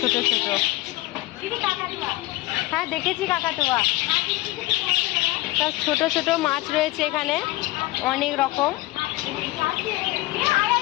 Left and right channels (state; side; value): quieter; right; 19.2 dB